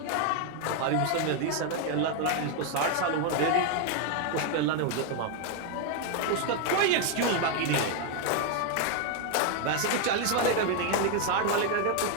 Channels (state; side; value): different; both; correlation 0.01